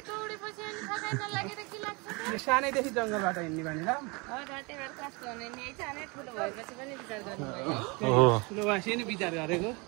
दौडेपछि अनि थकाइ नलागेर के लाग्छ त? सानैदेखि जङ्गलबाट हिँड्ने बानी ल। घाँटीबाट कस्तो हुने नि सानै ठुलो भएपछि पनि विचार गर्नुभयो है। ठुलो भएपछि नि विचार गरेको।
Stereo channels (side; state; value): left; quieter; 28.6 dB